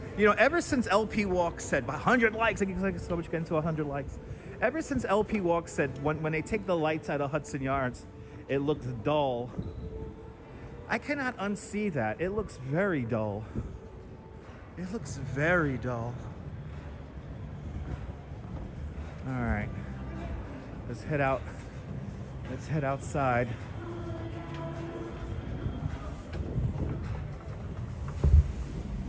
ever since LP Walk said 100 likes, I get so much getting to 100 likes. Ever since LP Walk said when they take the lights out of Hudson Yards, it looks dull. I cannot unsee that. It looks very dull. It looks very dull. All right, let's head out. Let's head outside.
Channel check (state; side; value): identical; both; correlation 1.00